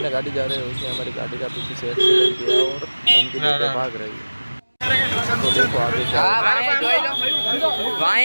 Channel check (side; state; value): both; inverted; correlation -1.00